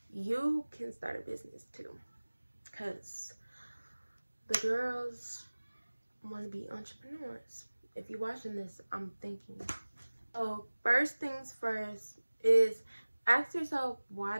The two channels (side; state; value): both; inverted; correlation -1.00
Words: you can start a business too, because the girls want to be entrepreneurs. If you're watching this, I'm thinking. So first things first is ask yourself, why